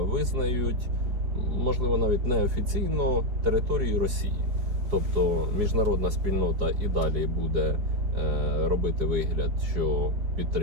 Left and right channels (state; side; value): late; left; 4.7 ms